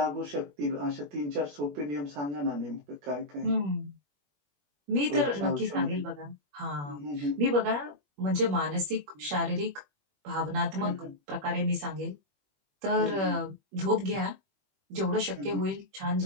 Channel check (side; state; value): left; late; 21 ms